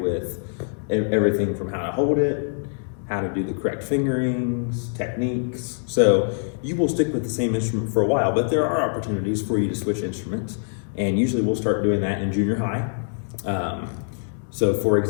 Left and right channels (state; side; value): silent; right; digital silence